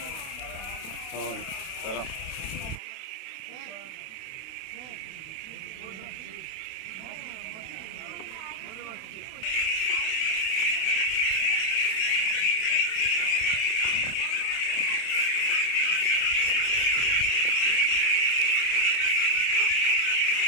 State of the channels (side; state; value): right; late; 32 ms